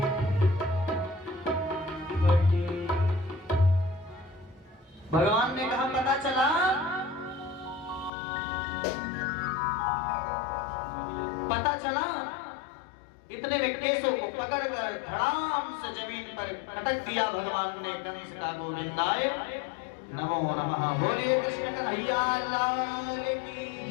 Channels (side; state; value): right; drops out; at 8.1 s